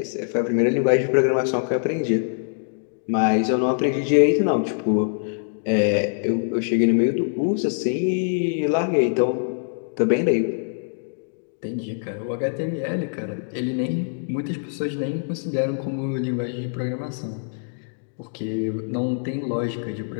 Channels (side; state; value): right; silent; digital silence